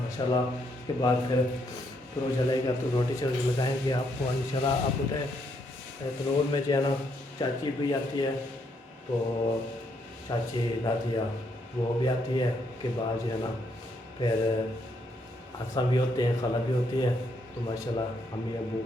माशाल्लाह, उसके बाद फिर वो चलेगा तो रोटी शोटी लगाएंगे आपको इंशाल्लाह। आप बताएँ तनूर में जो है ना चाची भी आती है, तो चाची दादिया वो भी आती है, के बाद जो है ना फिर हसन भी होते हैं, खाला भी होती है, तो माशाल्लाह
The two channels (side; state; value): both; normal; correlation 0.74